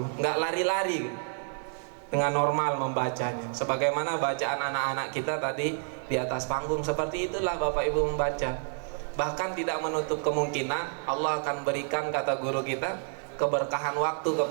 nggak lari-lari, dengan normal membacanya sebagaimana bacaan anak-anak kita tadi di atas panggung. Seperti itulah Bapak Ibu membaca. Bahkan tidak menutup kemungkinan Allah akan berikan, kata guru kita, keberkahan waktu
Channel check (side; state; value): left; silent; 58 dB below the other